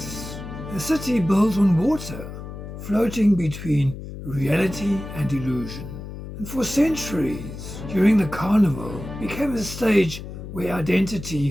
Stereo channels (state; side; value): noise; left; hum, 10 dB below the sound